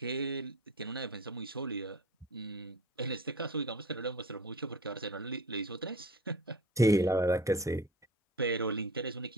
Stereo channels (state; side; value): normal; both; correlation 0.38